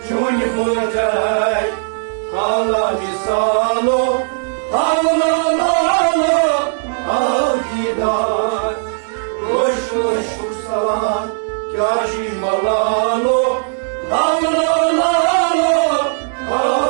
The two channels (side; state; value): left; silent; digital silence